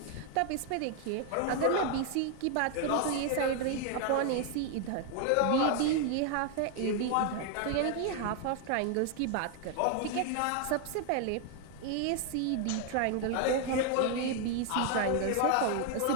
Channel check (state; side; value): different; both; correlation 0.00